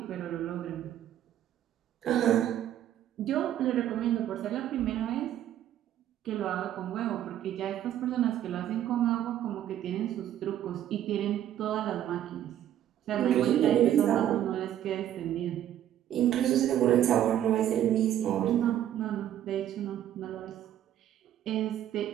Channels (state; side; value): quieter; left; 11.4 dB